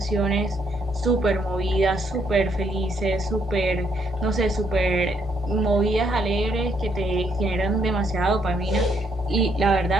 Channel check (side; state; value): both; normal; correlation 0.72